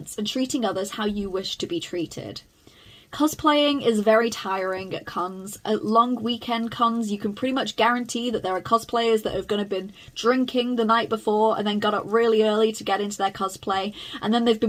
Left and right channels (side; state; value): both; identical; correlation 1.00